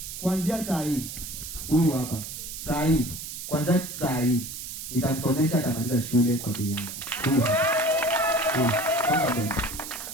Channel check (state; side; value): noise; right; hiss, 9 dB below the sound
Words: kuanzia saa hii, huyu hapa saa hii, kwanza saa hii nitamsomesha atamaliza shule kwa bei yangu.